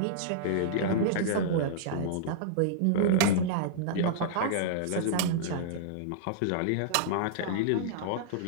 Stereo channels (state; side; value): different; both; correlation -0.02